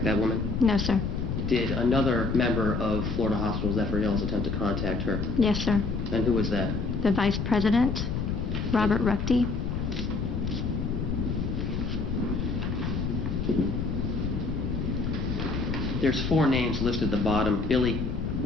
that woman? No, sir. Did another member of Florida Hospital Zephyr Hills attempt to contact her? Yes, sir. And who was that? The Vice President, Robert Ruckty. There's 4 names listed at the bottom: Billy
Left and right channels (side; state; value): left; noise; rumble, 2 dB below the sound